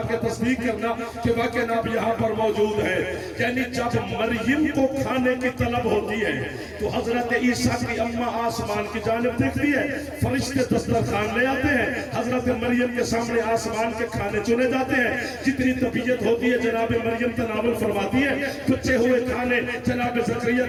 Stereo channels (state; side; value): identical; both; correlation 1.00